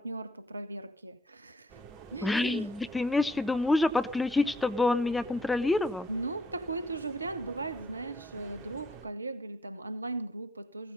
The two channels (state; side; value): normal; both; correlation 0.65